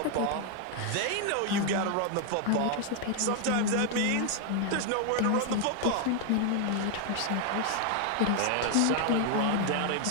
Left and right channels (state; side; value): different; both; correlation 0.00